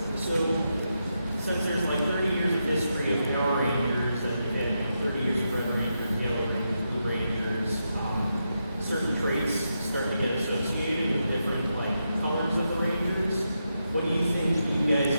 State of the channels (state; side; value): inverted; both; correlation -0.85